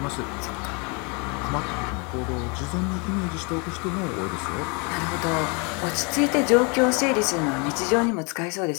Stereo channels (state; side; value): quieter; right; 32.4 dB